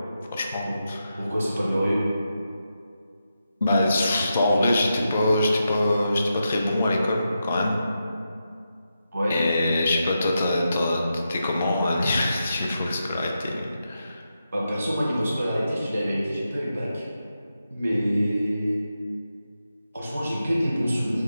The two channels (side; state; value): both; inverted; correlation -0.87